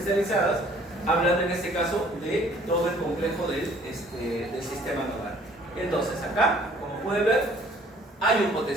hablando en este caso de todo el complejo del sistema nodal. Entonces acá, como pueden ver, hay un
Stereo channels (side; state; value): both; normal; correlation 0.56